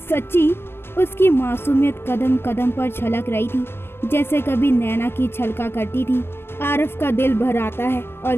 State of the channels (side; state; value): right; late; 0.12 ms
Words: सच्ची? उसकी मासूमियत कदम कदम पर छलक रही थी जैसे कभी नैना की छलका करती थी। आरव का दिल भर आता है और